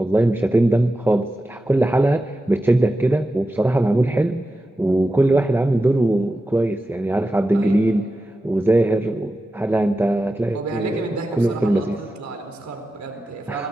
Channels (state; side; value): normal; both; correlation 0.92